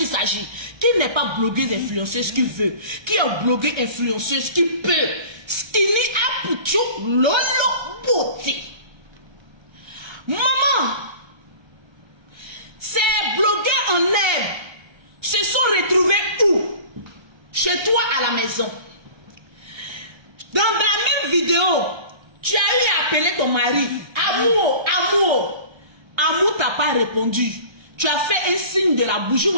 s'agit. Qui n'est pas blogueuse influenceuse qui veut? Qui est blogueuse influenceuse qui peut? Skinny Apucho Lolo Beauté. Maman, ces blogueurs en herbe se sont retrouvés où? Chez toi à la maison. Dans la même vidéo, tu as eu à appeler ton mari. Amour, amour. Amour t'a pas répondu. Tu as fait un signe de la bouche. Vous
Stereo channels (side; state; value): left; late; 1.3 ms